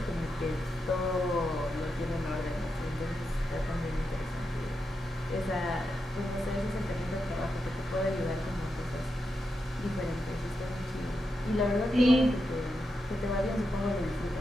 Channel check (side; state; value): both; normal; correlation 0.86